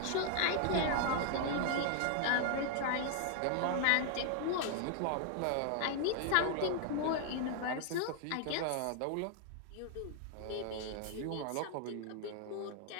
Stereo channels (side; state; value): both; different; correlation 0.00